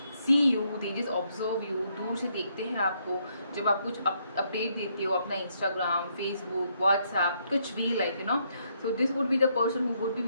see you, they just observe you, दूर से देखते हैं आपको जब आप कुछ अपडेट देते हो अपना इंस्टाग्राम, फेसबुक, व्हाट्सएप, कुछ भी like you know. So this would be the person who would be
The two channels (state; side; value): inverted; both; correlation -0.73